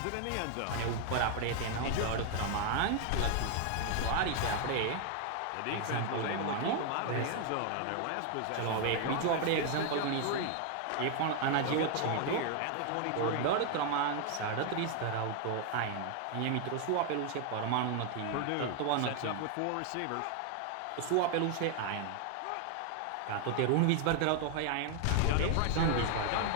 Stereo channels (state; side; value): different; both; correlation 0.00